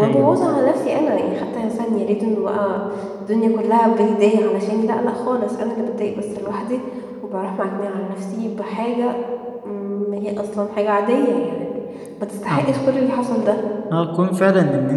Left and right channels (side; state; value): both; identical; correlation 1.00